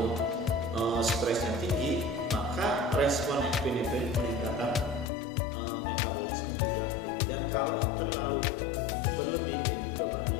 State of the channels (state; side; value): drops out; right; at 5.1 s